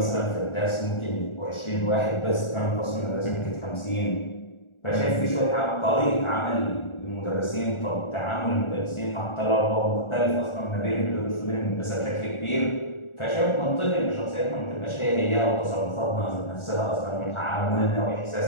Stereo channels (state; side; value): late; right; 1.4 ms